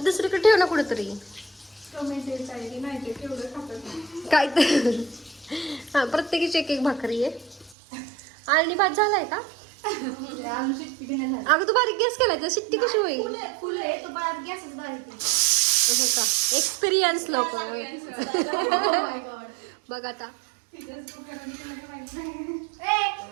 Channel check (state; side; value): drops out; left; at 7.8 s